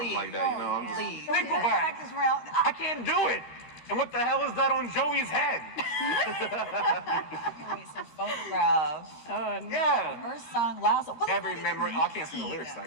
like that. You know, I'm just. practice round. I can't do it. And what the hell is that on Joey's head? It's a photograph. Yeah. First song, last song. Every memory. Oh, I can't see the lyrics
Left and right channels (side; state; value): right; late; 13 ms